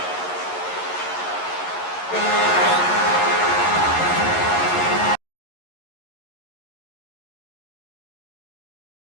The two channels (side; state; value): right; late; 11 ms